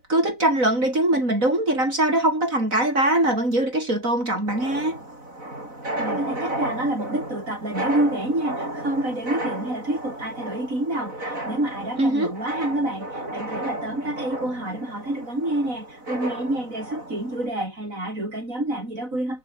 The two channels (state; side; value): late; left; 4.0 ms